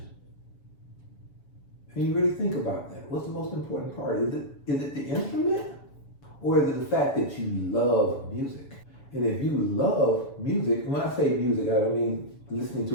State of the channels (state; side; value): late; right; 7.0 ms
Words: And you really think about that. What's the most important part? Is it the instrument? Or is it the fact that you love music? And if you love music, when I say music, I don't mean listening to